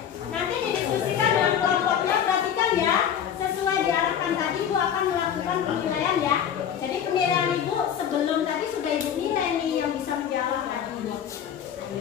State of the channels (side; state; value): right; quieter; 8.9 dB